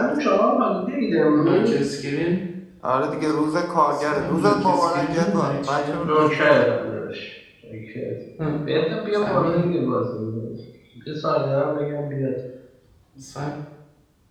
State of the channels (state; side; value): identical; both; correlation 1.00